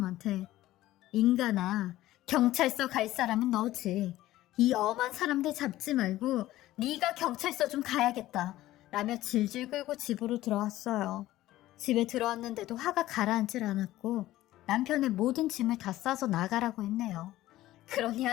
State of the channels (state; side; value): quieter; right; 15.4 dB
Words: 인간아, 경찰서 갈 사람은 너지. 이 엄한 사람들 잡지 말고 네가 경찰서 좀 가야겠다 라며 질질 끌고 집으로 들어왔어요. 집에 들어왔는데도 화가 가라앉질 않았고 남편의 모든 짐을 다 싸서 나가라고 했네요. 그러니